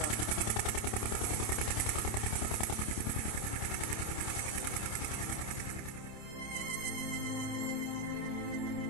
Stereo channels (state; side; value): late; right; 27 ms